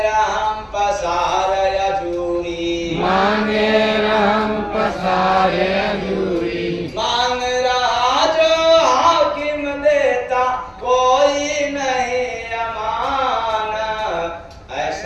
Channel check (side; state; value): both; identical; correlation 1.00